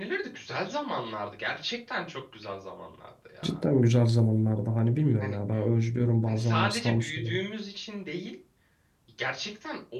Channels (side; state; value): both; identical; correlation 1.00